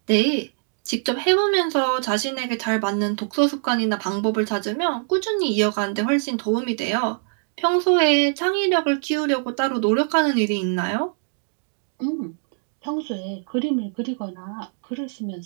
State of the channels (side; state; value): left; silent; 63 dB below the other